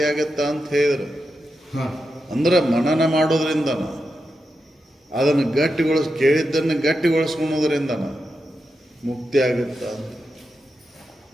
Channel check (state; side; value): normal; both; correlation 0.88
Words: ಆಗುತ್ತಾ ಅಂತ ಹೇಳಿದ್ರು. ಅಂದ್ರೆ ಮನನ ಮಾಡೋದ್ರಿಂದನ ಅದನ್ನು ಕೇಳಿದ್ದನ್ನು ಗಟ್ಟಿಗೊಳಿಸ್ಕೊಳೋದ್ರಿಂದನ ಮುಕ್ತಿ ಆಗುತ್ತ ಅಂತ.